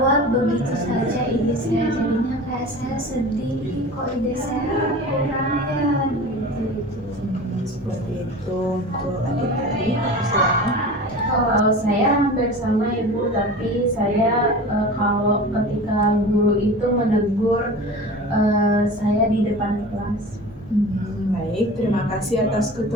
begitu saja ide saya, jadinya kayak saya sedih, kok ide saya kurang ya gitu. Seperti itu. Untuk adik-adik, dipersilakan. Kalau saya hampir sama Ibu, tapi saya kalau ketika guru itu menegur saya di depan kelas. Baik, terima kasih atas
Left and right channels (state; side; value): normal; both; correlation 0.36